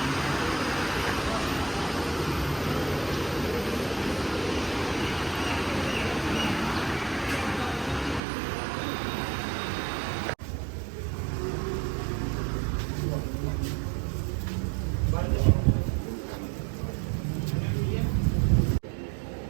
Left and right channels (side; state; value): left; drops out; at 8.2 s